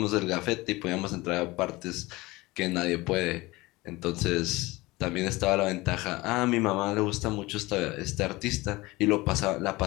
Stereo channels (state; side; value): quieter; right; 21.2 dB